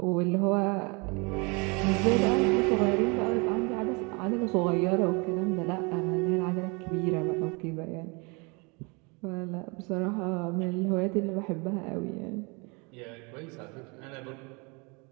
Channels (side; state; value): left; quieter; 29.7 dB